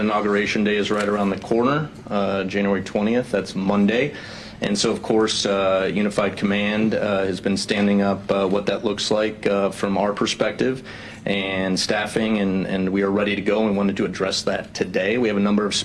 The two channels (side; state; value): both; identical; correlation 1.00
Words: Day is right around the corner, January 20th. That's Monday. And so, of course, Unified Command has been standing up what that looks like from our perspective and staffing, and we are ready to go and wanted to address that today. We have a number of